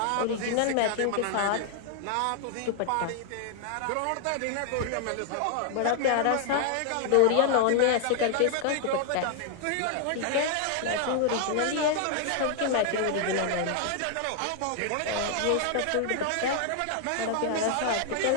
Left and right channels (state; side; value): different; both; correlation 0.00